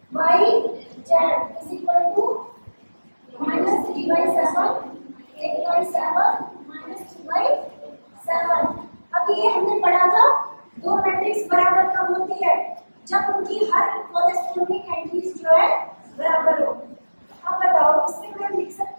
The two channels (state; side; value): inverted; both; correlation -1.00